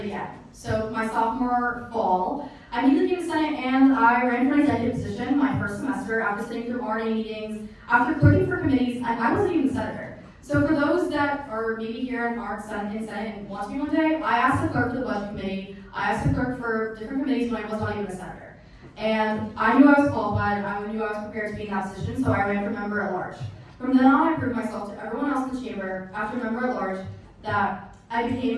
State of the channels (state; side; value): identical; both; correlation 1.00